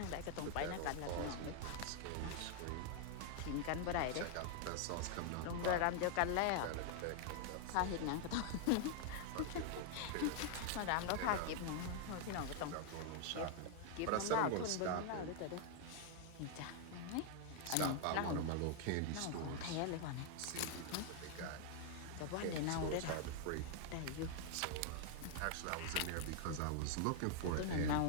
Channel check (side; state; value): both; different; correlation 0.00